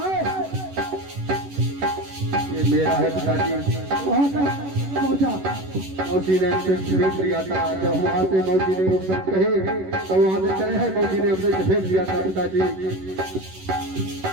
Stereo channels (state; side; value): late; left; 11 ms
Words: है? मेरा है पिताजी वहाँ तक पहुँचा। मौसी ने हमसे भेज दिया था जब वहाँ से मौसी ने सब कहे तो वहाँ से चले हैं मौसी ने हमसे भेज दिया था पिताजी